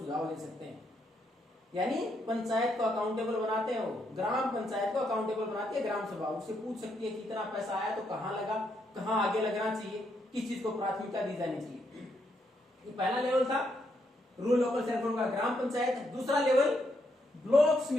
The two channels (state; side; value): normal; both; correlation 0.77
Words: दे सकते हैं। यानी पंचायत को अकाउंटेबल बनाते हैं, वो ग्राम पंचायत को अकाउंटेबल बनाती है ग्राम सभा। उससे पूछ सकती है कि इतना पैसा आया तो कहां लगा, कहां आगे लगना चाहिए, किस चीज को प्राथमिकता दी जानी चाहिए। ये पहला लेवल था रूरल लोकल सेल्फ का ग्राम पंचायत। दूसरा लेवल ब्लॉक